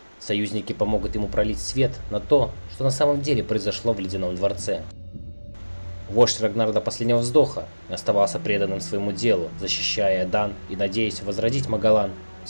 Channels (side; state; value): both; inverted; correlation -1.00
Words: Союзники помогут ему пролить свет на то, что на самом деле произошло в Ледяном дворце. Вождь Рагнар до последнего вздоха оставался преданным своему делу, защищая Эдан и надеясь возродить Магалан